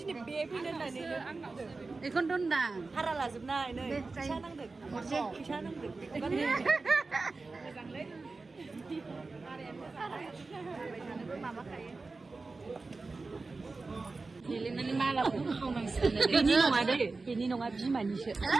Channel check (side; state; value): left; quieter; 3.8 dB